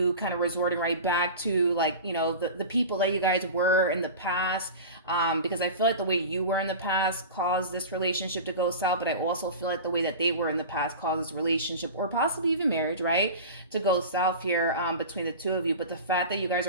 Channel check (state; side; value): inverted; both; correlation -0.33